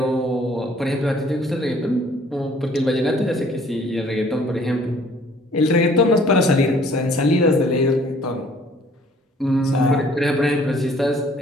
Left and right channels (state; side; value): normal; both; correlation 0.57